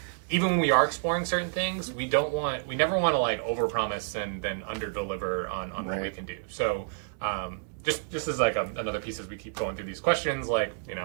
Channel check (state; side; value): silent; left; digital silence